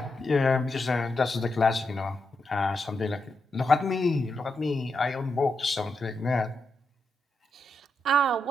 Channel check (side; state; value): both; normal; correlation 0.85